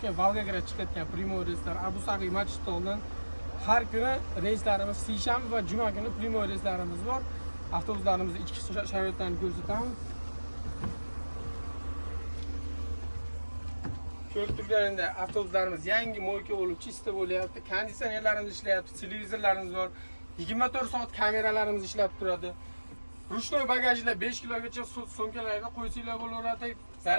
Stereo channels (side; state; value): both; inverted; correlation -1.00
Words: Volgograd chiqayotgan primoy reyslar Abu Sag'iy Machitoldan har kuni reyslarimiz seshanba va juma kuni primoy reyslarimiz bor. Avtobuslarimizni ichki sharoitlarini ko'rsatamiz. Ko'rib turganingda avtobuslarimiz yangi mo'yka bo'lib chista bo'lyapti. Konditsionerlarimiz ishlayapti, televizorlarimiz bor. 24 soat kameralarimiz ishlab turadi. Ruchnoy bagajlar 5 kilogacha sumkalarda qo'ysanglar bo'laveradi.